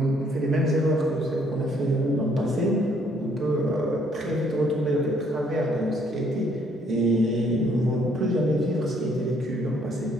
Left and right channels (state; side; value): normal; both; correlation 0.66